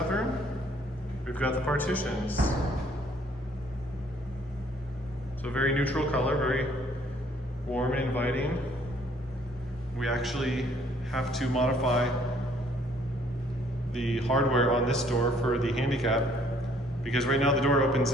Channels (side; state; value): both; normal; correlation 0.62